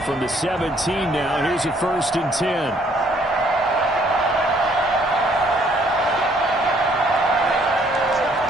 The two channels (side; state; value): both; normal; correlation 0.64